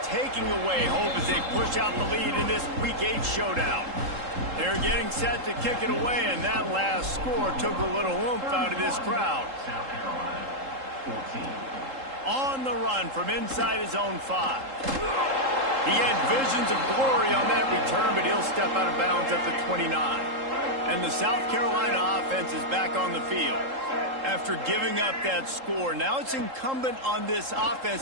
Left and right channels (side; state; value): left; late; 3.8 ms